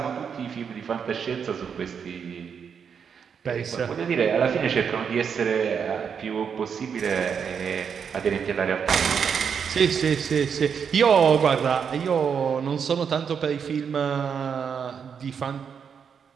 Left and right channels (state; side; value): quieter; left; 6.9 dB